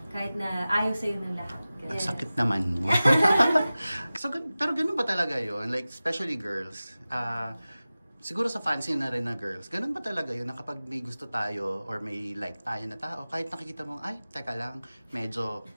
kahit na ayaw sa'yo ng lahat. Yes. Sakit naman. So, pero ganun ba talaga yun? Like, especially girls. Siguro sa fancy na rin na girls, ganun ba talaga yun na kapag may gusto tayo or may like tayo na tao, kahit nakikita mo, ay, teka lang, medyo,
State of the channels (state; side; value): inverted; both; correlation -0.96